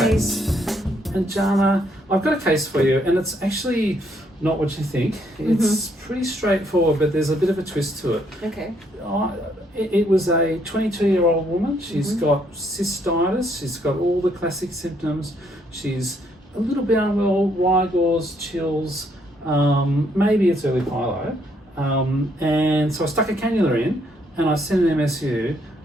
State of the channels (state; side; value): normal; both; correlation 0.71